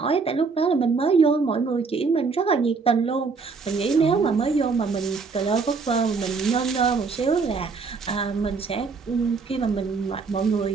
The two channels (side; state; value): left; quieter; 4.8 dB